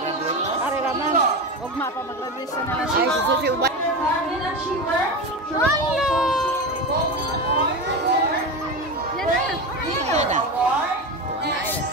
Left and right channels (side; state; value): both; normal; correlation 0.21